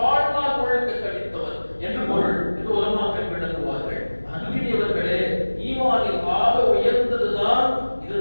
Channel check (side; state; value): both; inverted; correlation -1.00